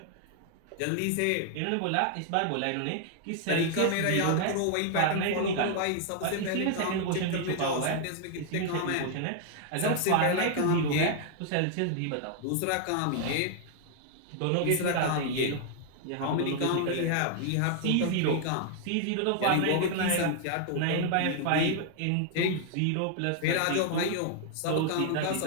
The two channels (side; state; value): both; different; correlation 0.00